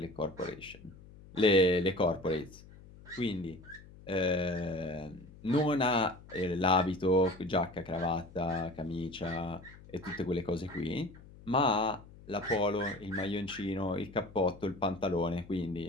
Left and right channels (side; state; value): left; noise; hum, 20 dB below the sound